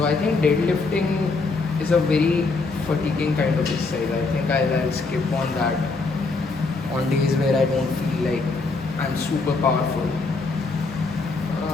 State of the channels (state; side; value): quieter; right; 3.9 dB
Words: I think deadlifting is a very fatiguing kind of exercise. I think I'll skip on that on days where I don't feel like I'm super powerful.